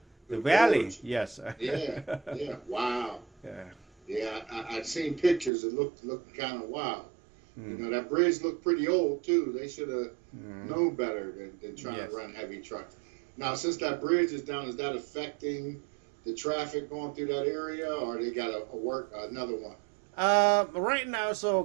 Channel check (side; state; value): left; drops out; at 5.5 s